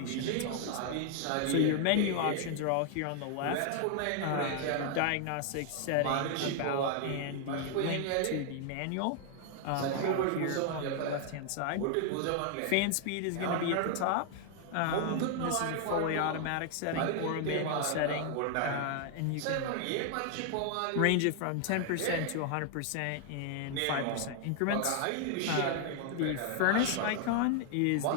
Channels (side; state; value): both; different; correlation 0.00